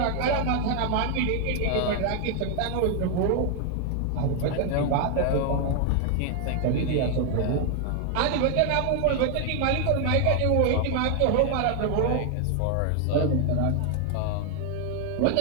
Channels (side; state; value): both; different; correlation 0.00